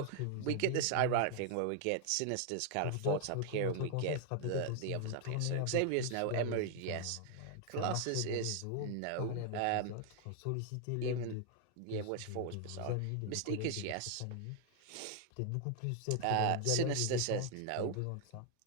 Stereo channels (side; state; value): both; different; correlation 0.00